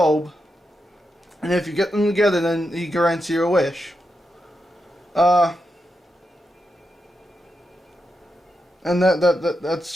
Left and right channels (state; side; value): normal; both; correlation 0.86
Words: And if you get them together, then he grants you a wish. And that